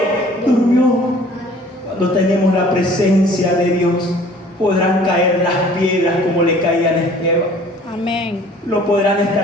durmió. Cuando tenemos la presencia de Dios, podrán caer las piedras como le caían a Esteban. Amén. Lo podrán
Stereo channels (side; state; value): both; normal; correlation 0.52